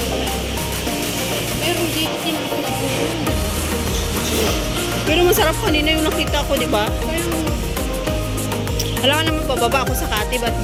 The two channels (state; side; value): identical; both; correlation 1.00